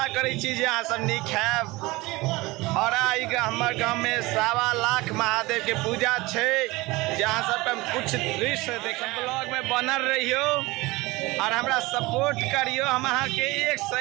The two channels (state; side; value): quieter; left; 21.6 dB